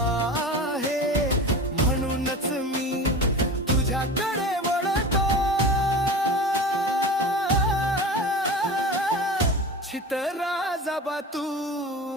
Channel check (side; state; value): both; normal; correlation 0.33